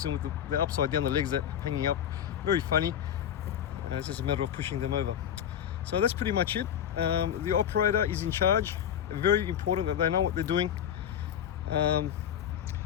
with the upside down, the legs are hanging up. Very funny. It's just a matter of pushing them over. So that's pretty much it. The operator is in charge. Very important that they know what they're doing.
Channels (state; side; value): quieter; right; 9.5 dB